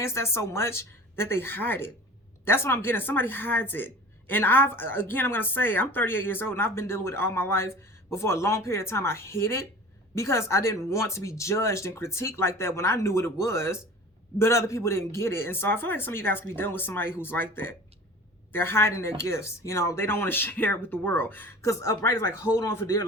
that so much that they hide it. That's what I'm getting. Somebody hides it. And I'm going to say, I'm 38 years old and I've been dealing with it all my life. But for a long period of time, I hid it, because I didn't want to be judged and critiqued like that when I knew what it was, but other people didn't get it. And so I feel like some of you guys could be dealing with somebody who's like that. They're hiding their gifts. You know, they don't want to share it with the world. Because upright is like, hold on for dear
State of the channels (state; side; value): normal; both; correlation 0.40